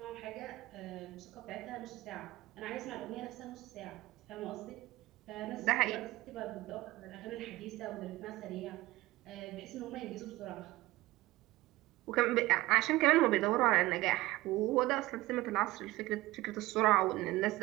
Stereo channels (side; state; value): left; quieter; 18.5 dB